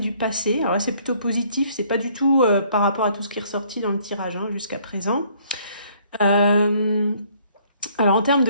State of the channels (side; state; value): both; inverted; correlation -0.62